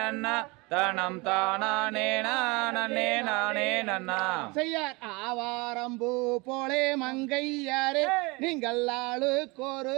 தனம் தானே நானே நானே நன்னா செய்யார் ஆவாரம்பூ போலே மங்கையாரே நீங்கள் ஆளுக்கொரு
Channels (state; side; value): quieter; left; 26.3 dB